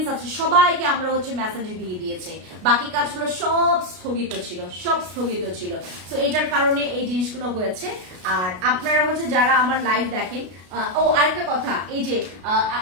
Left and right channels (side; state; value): left; late; 33 ms